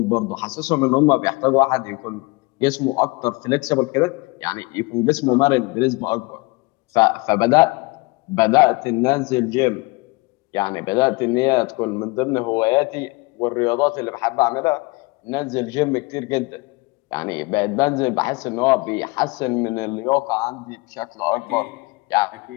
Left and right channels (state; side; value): quieter; right; 26.0 dB